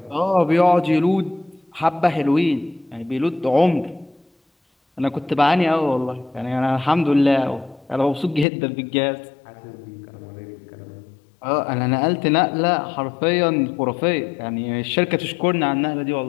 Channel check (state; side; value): drops out; right; at 8.5 s